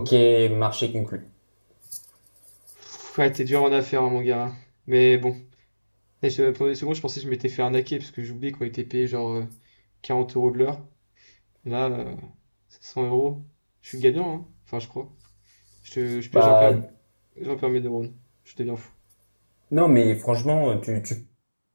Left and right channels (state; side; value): inverted; both; correlation -1.00